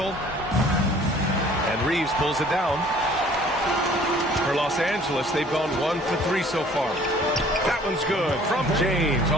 And Reeves pulls it down. For Los Angeles, they've gone 1 for 3 so far. That one's good from James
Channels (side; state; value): both; normal; correlation 0.54